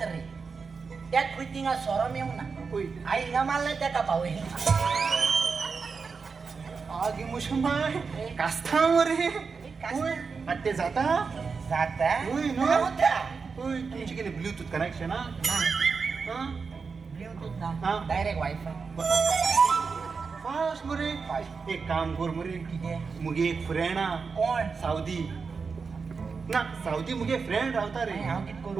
रे त्या क्विटिंगा सोरो मेव ना होय आई हिंगा मारला त्या पावय आगी मुशंबाय कास्ता मरे होय आता ते जाता जाता होय ना होता होय तुमची किती ब्लूटूथ कनेक्शन हा हा ब्लूटूथ हा. ना डायरेक्ट वायफाय फास्ट मरे एक काम कर मरे कितें मुगे एक फ्रेंड हा कोण सावदी ना सावदी मुगे फ्रेंड रावता रे हांव कित करूं?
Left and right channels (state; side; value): quieter; left; 5.1 dB